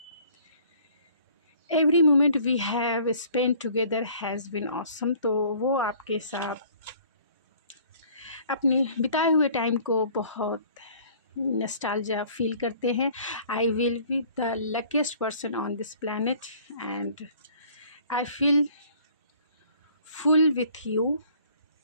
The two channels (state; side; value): inverted; both; correlation -0.54